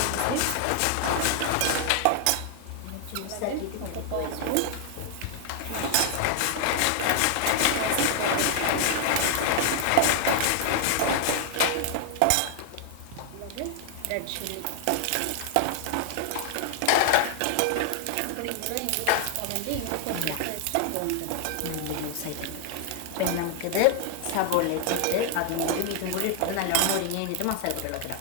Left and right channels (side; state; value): both; different; correlation 0.00